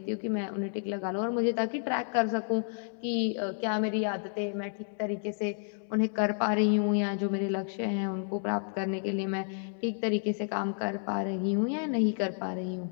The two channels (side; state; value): right; silent; digital silence